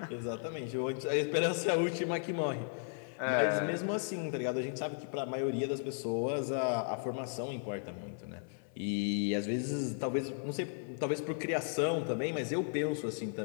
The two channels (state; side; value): silent; right; digital silence